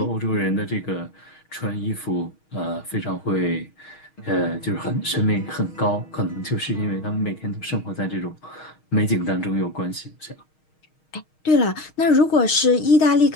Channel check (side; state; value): right; late; 6.4 ms